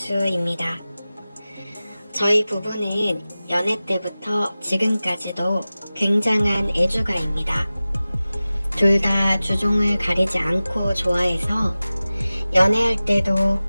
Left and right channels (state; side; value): inverted; both; correlation -0.97